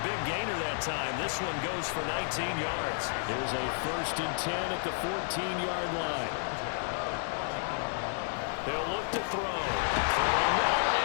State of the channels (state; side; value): silent; right; digital silence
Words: big gainer that time. This one goes for 19 yards. Here's a 1st and 10 at the 14-yard line. They'll look to throw. Throwing well,